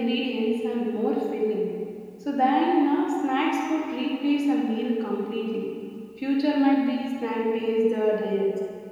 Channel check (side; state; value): both; identical; correlation 1.00